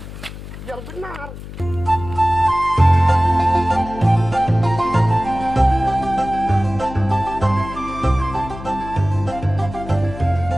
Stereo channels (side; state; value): left; noise; hum, 12 dB below the sound